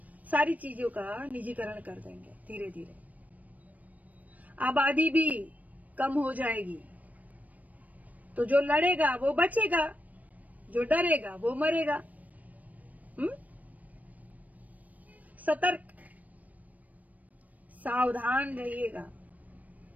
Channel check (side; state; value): left; late; 0.073 ms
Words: सारी चीजों का निजीकरण कर देंगे धीरे धीरे। आबादी भी कम हो जाएगी, तो जो लड़ेगा वो बचेगा, जो डरेगा वो मरेगा। सतर्क, सावधान रहिएगा,